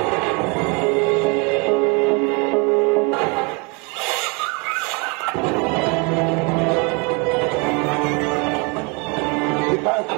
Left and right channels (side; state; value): left; quieter; 31.4 dB